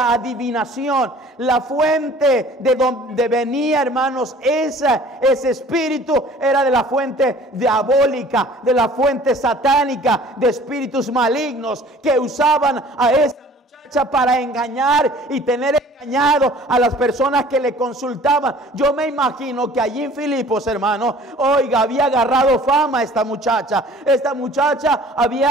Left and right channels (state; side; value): normal; both; correlation 0.50